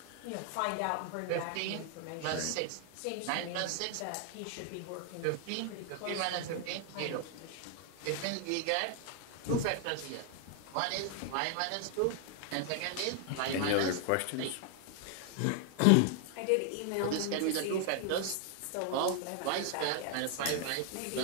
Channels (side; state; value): both; different; correlation 0.00